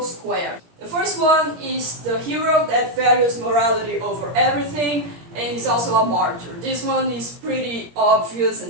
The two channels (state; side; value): late; left; 17 ms